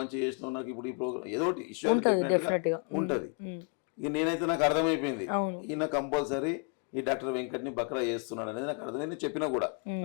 చేసినావు, నాకు ఇప్పుడు ఈ ప్రోగ్రామ్ ఏదో ఒకటి ఇష్యూ అయితే డెఫినెట్ గా ఉంటది. ఇక నేనైతే నాకు అర్థమైపోయింది, ఈయన కంపల్సరీ ఈ డాక్టర్ వెంకట్ని బక్రా చేస్తున్నాడు అనేది నాకు అర్థమైంది. చెప్పినా కూడా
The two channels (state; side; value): quieter; right; 39.3 dB